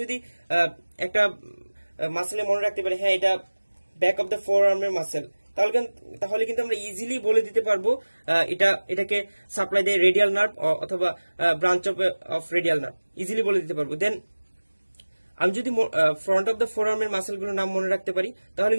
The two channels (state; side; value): inverted; both; correlation -1.00